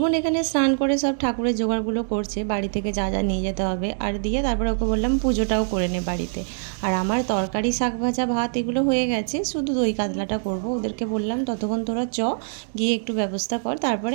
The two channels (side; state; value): left; silent; digital silence